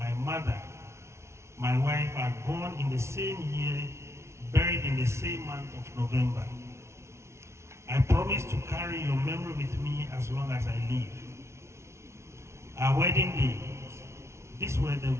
mother, my wife, are born in the same year, buried in the same month of November. I promise to carry your memory with me as long as I live. Our wedding day, these were the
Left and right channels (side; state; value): left; late; 0.13 ms